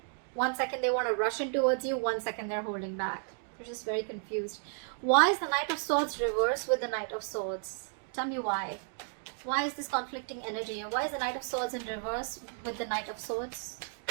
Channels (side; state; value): left; silent; 55 dB below the other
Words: 1 second they want to rush in towards you, 1 second they're holding back. They're just very confused. Why is the Knight of Swords reversed with the Knight of Swords? Tell me why. Why is this conflicting energy? Why is the Knight of Swords in reverse with the Knight of Swords?